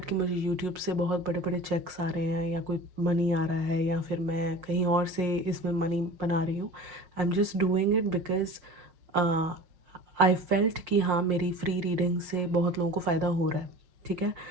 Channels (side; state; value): left; late; 5.6 ms